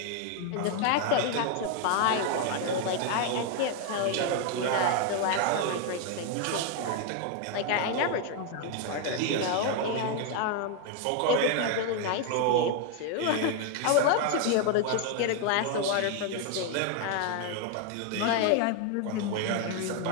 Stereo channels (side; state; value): both; different; correlation 0.00